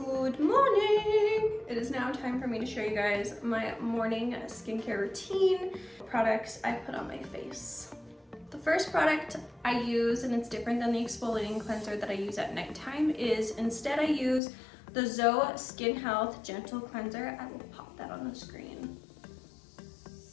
morning! It is now time for me to show you guys my morning skincare routine, products I put on my face. The first product I use, and it's different than the exfoliating cleanser that I use at nighttime, is instead I use the Zoe Skin Health Gentle Cleanser. I will pop that on the screen.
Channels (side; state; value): right; drops out; at 14.4 s